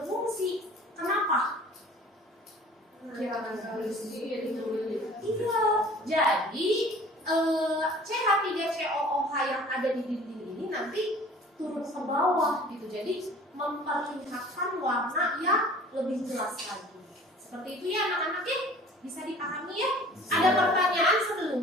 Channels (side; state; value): both; normal; correlation 0.48